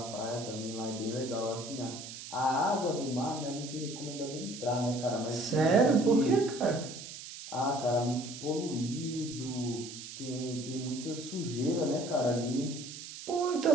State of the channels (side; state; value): right; noise; hiss, 11 dB below the sound